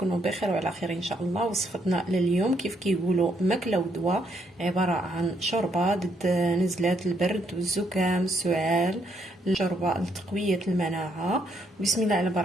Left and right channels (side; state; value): both; normal; correlation 0.73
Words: بخير وعلى خير ان شاء الله. وصفتنا لليوم كيف كيقولوا ماكله ودواء، عباره عن شوربه ضد نزلات البرد والزكام السعال، شوربه لتقويه المناعه. بسم الله على